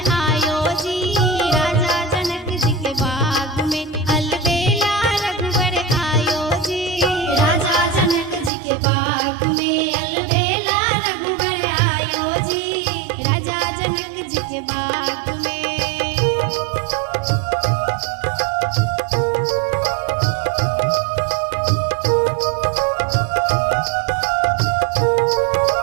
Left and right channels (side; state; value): left; drops out; at 8.5 s